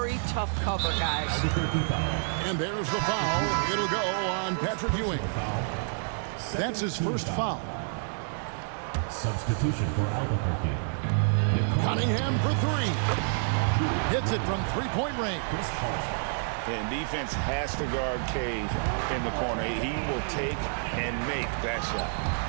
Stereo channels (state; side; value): silent; left; 59 dB below the other